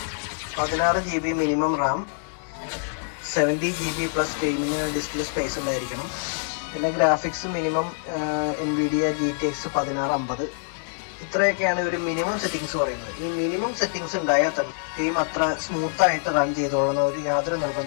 16 GB minimum RAM, 70 GB plus ഗെയിമിന് ഡിസ്പ്ലേ സ്പേസ് ഉണ്ടായിരിക്കണം. പിന്നെ ഗ്രാഫിക്സ് മിനിമം NVIDIA GTX 1650. ഇത്രയൊക്കെയാണ് ഒരു മിനിമം സെറ്റിങ്സ് പറയുന്നത്. ഈ മിനിമം സെറ്റിങ്സ് ഉണ്ടായാൽ തന്നെ ഗെയിം അത്ര സ്മൂത്തായിട്ട് റൺ ചെയ്തോളുന്ന ഒരു യാതൊരു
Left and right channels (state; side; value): silent; right; 58 dB below the other